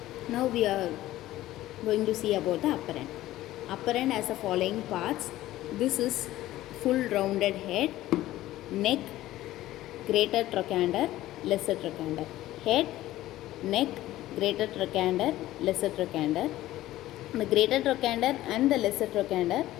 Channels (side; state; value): right; quieter; 15.3 dB